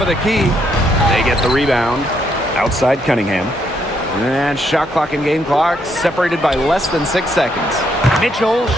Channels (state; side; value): normal; both; correlation 0.74